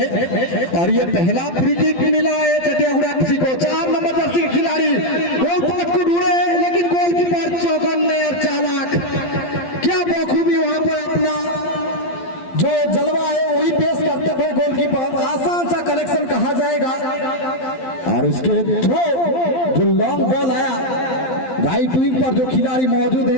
और ये पहला फ्री किक मिला है चटियागुड़ा एफसी को। 4 नंबर जर्सी के खिलाड़ी गोल पोस्ट को ढूंढे, लेकिन गोलकीपर चौकन्ने और चालाक, क्या बखूबी वहां पर अपना जो जलवा है वही पेश करते हुए गोलकीपर, आसान सा कलेक्शन कहा जाएगा। और उसके थ्रो जो लॉन्ग बॉल आया राइट विंग पर जो खिलाड़ी मौजूद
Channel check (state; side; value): late; right; 12 ms